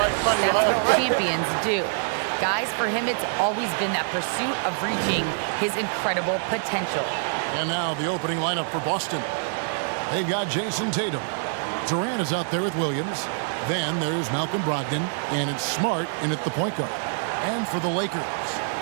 what champions do. Guys, for him, it's always been that pursuit of reaching his incredible potential. And now the opening lineup for Boston. They've got Jason Tatum. Durant is out there with Williams. Then there's Malcolm Brogdon, and it's Smart in at the point guard. And for the Lakers,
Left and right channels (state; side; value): silent; left; digital silence